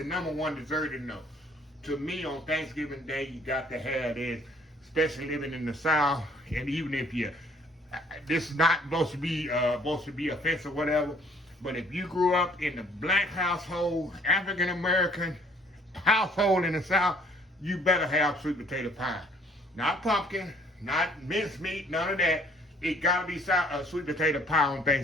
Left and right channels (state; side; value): normal; both; correlation 0.60